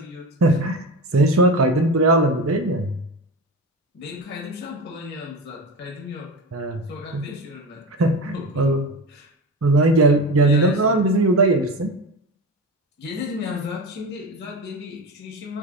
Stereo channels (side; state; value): both; normal; correlation 0.25